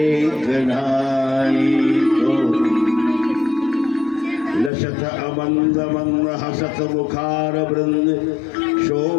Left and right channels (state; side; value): drops out; right; at 4.7 s